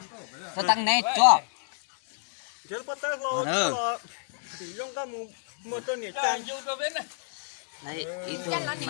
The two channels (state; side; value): silent; right; 58 dB below the other